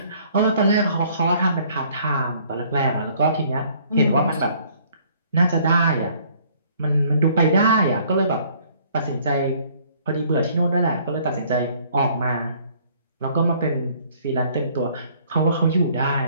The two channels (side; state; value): both; inverted; correlation -0.60